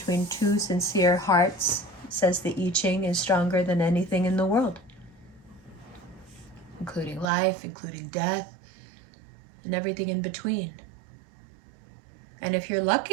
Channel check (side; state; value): left; drops out; at 7.2 s